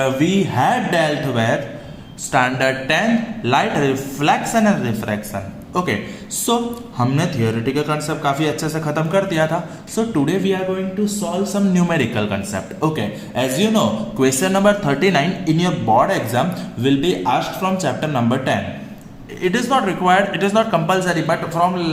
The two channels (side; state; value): both; identical; correlation 1.00